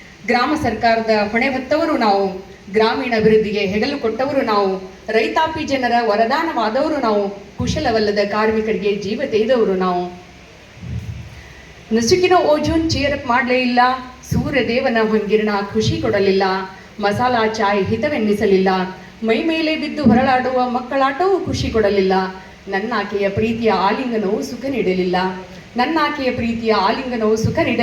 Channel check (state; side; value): identical; both; correlation 1.00